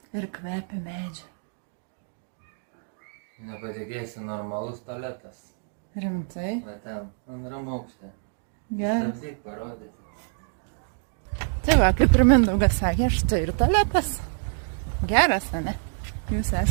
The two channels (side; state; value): left; silent; digital silence